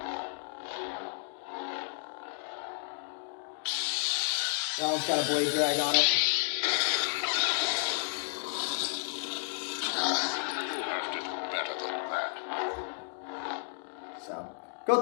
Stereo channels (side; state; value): right; silent; digital silence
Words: That one's got a blade drag on it. You'll have to do better than that. So, go